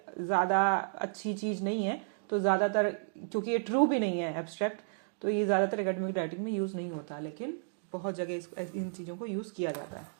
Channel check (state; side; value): silent; left; digital silence